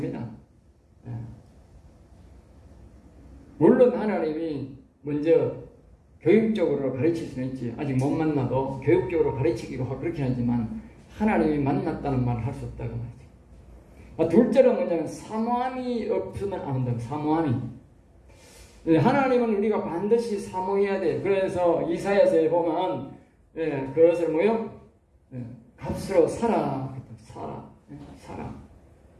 물론 하나님이 먼저 교육적으로 가르칠 수는 있지. 아직 못 만나도 교육적으로 가르치기도 하고 그렇긴 하지만 하나님이 만났다는 말을 할 수 없다고 말이죠. 둘째는 뭐냐면 사모함이 없으면 안 된다고. 사모함이. 하나님은 우리가 반드시 사모해야 돼. 그래서 이사야서에 보면 그것을 뭐요? 값으로 사라.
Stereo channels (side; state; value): both; identical; correlation 1.00